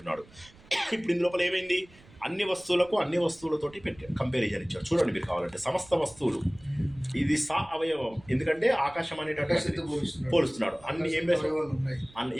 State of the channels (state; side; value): noise; right; rumble, 24 dB below the sound